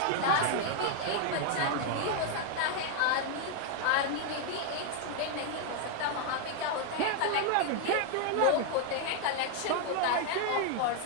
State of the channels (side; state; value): both; different; correlation 0.00